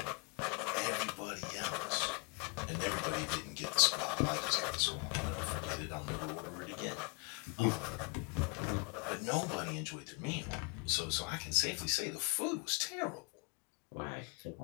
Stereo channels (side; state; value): right; quieter; 33.4 dB